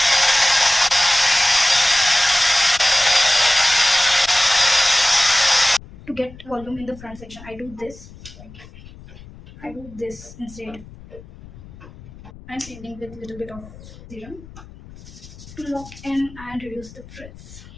to get volume in the front section, I do this. Like, I do this instead. I'm painting with a little bit of serum to lock in and reduce the frizz.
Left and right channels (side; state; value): left; noise; rumble, 19 dB below the sound